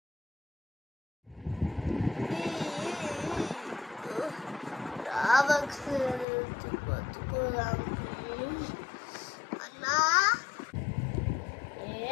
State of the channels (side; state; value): right; drops out; at 6.2 s